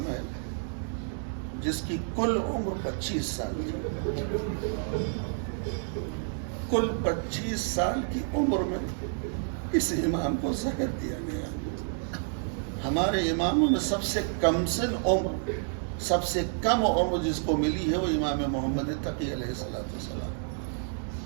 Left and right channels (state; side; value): silent; left; 58 dB below the other